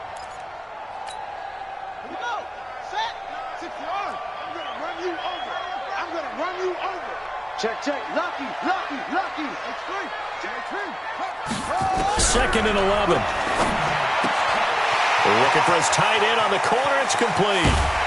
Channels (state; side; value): identical; both; correlation 1.00